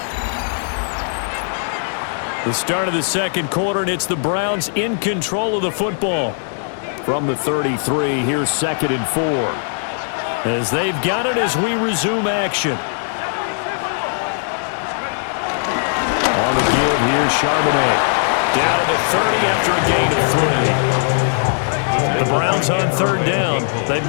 The start of the second quarter, and it's the Browns in control of the football. From the 33, here's 2nd and 4. As they've got it as we resume action. On the give, here's Charbonnet. Down to 30 after a gain of 3. The Browns on 3rd down. They've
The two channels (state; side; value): silent; right; digital silence